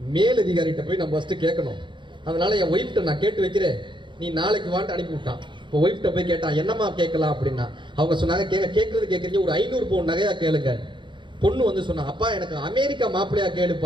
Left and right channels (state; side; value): late; left; 0.23 ms